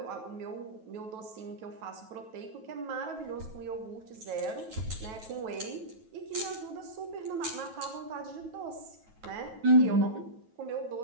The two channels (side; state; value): left; late; 9.2 ms